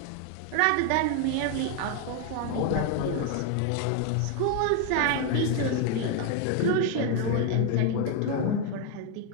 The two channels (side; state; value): both; different; correlation 0.01